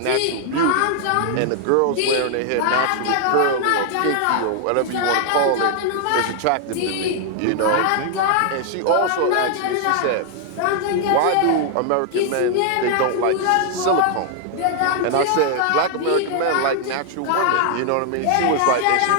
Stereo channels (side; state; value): both; different; correlation 0.00